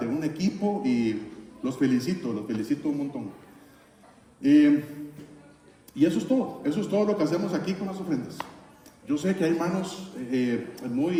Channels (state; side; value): identical; both; correlation 1.00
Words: un equipo, y los felicito un montón. Y eso es todo lo que hacemos aquí con las ofrendas. Yo sé que hay hermanos